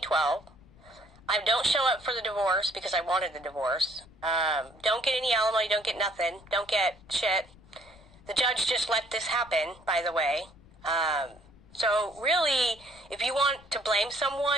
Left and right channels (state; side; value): noise; left; rumble, 24 dB below the sound